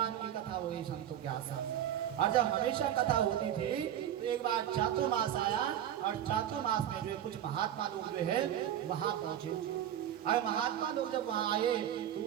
की कथा हुई संतों के आश्रम में, और जब हमेशा कथा होती थी तो एक बार चातुर्मास आया, और चातुर्मास में जो है कुछ महात्मा लोग जो है वहाँ पहुँचे, और महात्मा लोग जब वहाँ आए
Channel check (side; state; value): left; quieter; 10.8 dB